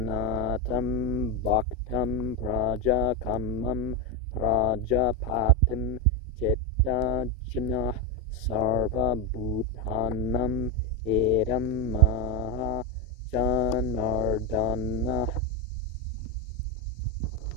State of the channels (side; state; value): both; normal; correlation 0.09